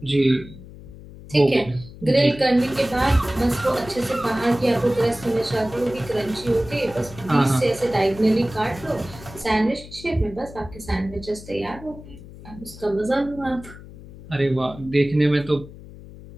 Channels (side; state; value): left; noise; hum, 17 dB below the sound